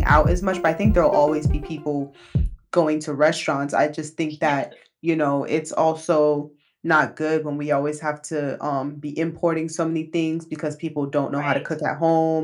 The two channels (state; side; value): identical; both; correlation 1.00